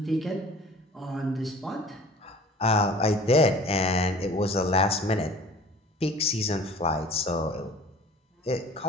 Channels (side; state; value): both; normal; correlation 0.45